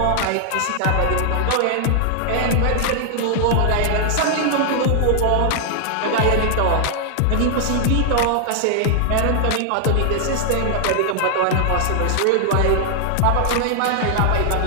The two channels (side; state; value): both; different; correlation -0.01